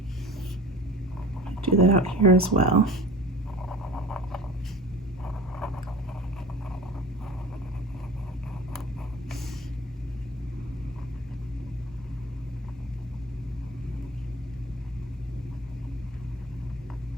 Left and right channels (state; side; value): normal; both; correlation 0.39